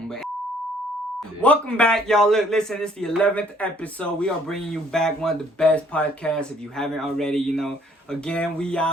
But welcome back, y'all. Look, listen, it's the 11th episode. We are bringing you back one of the best podcasts. If you haven't already, you know. Again, we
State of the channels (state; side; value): normal; both; correlation 0.62